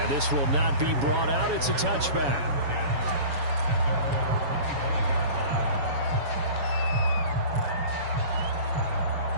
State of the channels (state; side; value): late; left; 7.1 ms